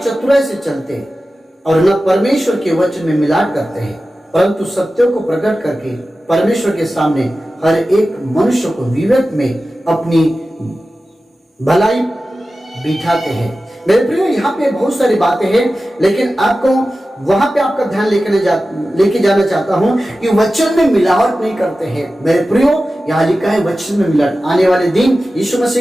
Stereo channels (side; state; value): both; normal; correlation 0.94